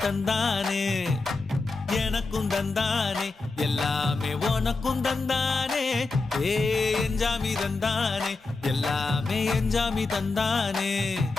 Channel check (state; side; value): quieter; right; 3.7 dB